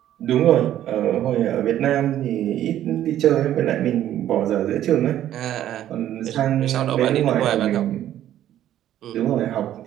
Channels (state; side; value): quieter; left; 11.9 dB